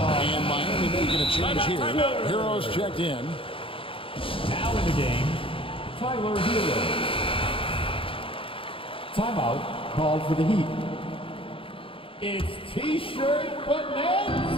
And Miami making a change here. Heroes checked in. Now in the game, Tyler Hero. Timeout called for the Heat. It's T-shirt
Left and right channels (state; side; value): late; right; 0.26 ms